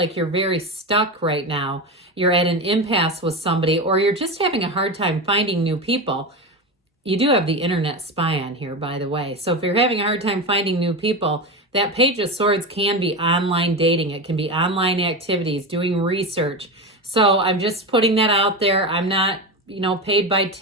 you're very stuck right now, you're at an impasse with somebody, or you're just having a hard time finding new people. You do have the internet spy on here, by the way. So if you're having a hard time finding new people, that Page of Swords can be online dating. It can be online activities, doing research. So I'm just putting that out there. I'm not, paid by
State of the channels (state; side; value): normal; both; correlation 0.20